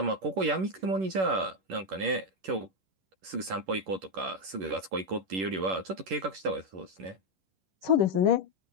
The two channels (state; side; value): late; left; 11 ms